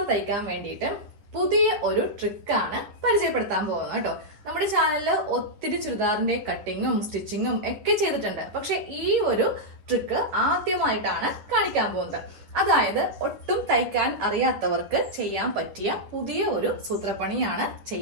തയ്ക്കാൻ വേണ്ടിയിട്ട് പുതിയ ഒരു ട്രിക്കാണ് പരിചയപ്പെടുത്താൻ പോകുന്നത് കേട്ടോ. നമ്മുടെ ചാനലിൽ ഒത്തിരി ചുരിദാറിന്റെ കട്ടിങ്ങും സ്റ്റിച്ചിങ്ങും ഒക്കെ ചെയ്തിട്ടുണ്ട്. പക്ഷെ ഈ ഒരു ട്രിക്ക് ആദ്യമായിട്ടാണ് കാണിക്കാൻ പോകുന്നത്. അതായത് ഒട്ടും തയ്ക്കാൻ അറിയാത്തവർക്ക് ചെയ്യാൻ പറ്റിയ പുതിയ ഒരു സൂത്രപ്പണിയാണ്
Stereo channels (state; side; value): late; left; 10 ms